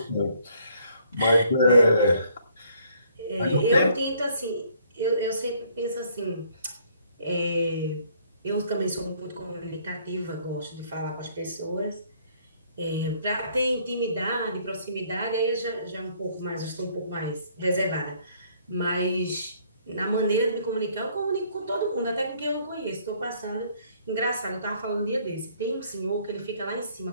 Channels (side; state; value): both; inverted; correlation -0.63